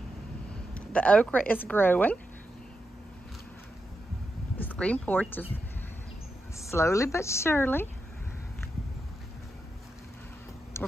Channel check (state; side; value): normal; both; correlation 0.87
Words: The okra is growing. This green porch is slowly but surely. We're